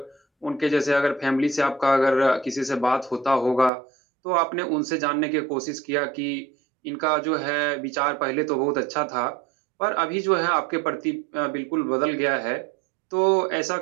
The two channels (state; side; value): drops out; left; at 3.7 s